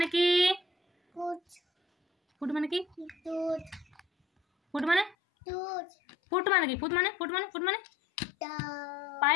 কি কুচ ফুট মানে কি টুট ফুট মানে টুট ফুট মানে কি ফুট মানে ফুট মানে টা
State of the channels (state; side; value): drops out; right; at 5.2 s